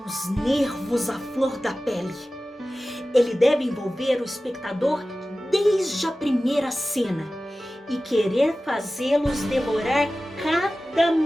os nervos à flor da pele. Ele deve envolver o espectador desde a primeira cena e querer fazê-los devorar cada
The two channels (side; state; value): both; normal; correlation 0.96